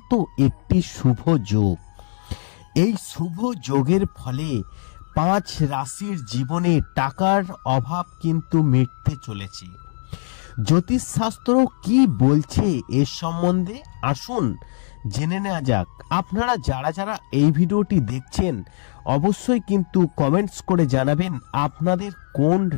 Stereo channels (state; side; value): silent; right; 65 dB below the other